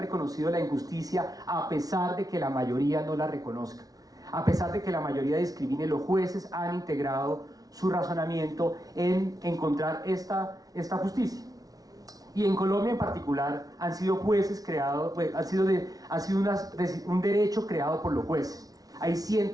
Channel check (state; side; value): late; left; 0.18 ms